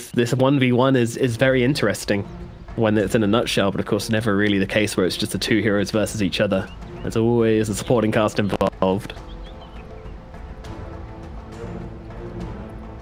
1v1 is very interesting when it's in a nutshell, but of course never really the case where it's just the two heroes versus each other. There's always a supporting cast involved.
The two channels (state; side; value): identical; both; correlation 1.00